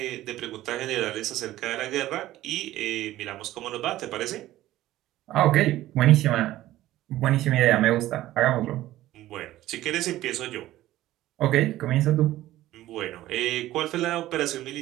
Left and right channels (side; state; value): left; quieter; 15.1 dB